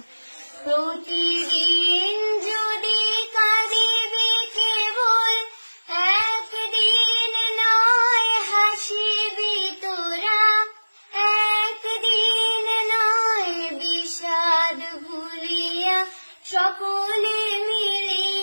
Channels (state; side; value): inverted; both; correlation -1.00